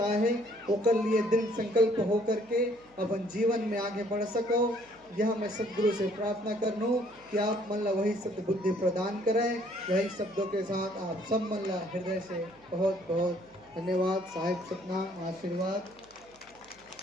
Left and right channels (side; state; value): right; noise; hum, 30 dB below the sound